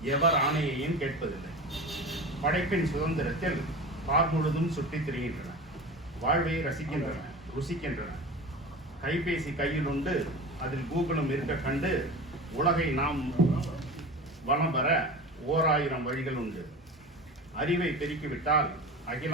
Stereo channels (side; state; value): both; normal; correlation 0.32